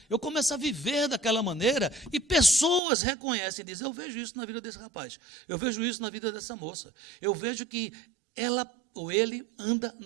Eu começo a viver daquela maneira e pessoas reconhecem e dizem, eu vejo isso na vida desse rapaz, eu vejo isso na vida dessa moça, eu vejo que ela ou ele anda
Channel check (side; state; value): left; drops out; at 2.8 s